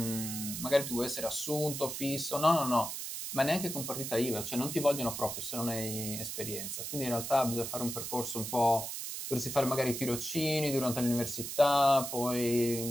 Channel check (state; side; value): noise; right; hiss, 6 dB below the sound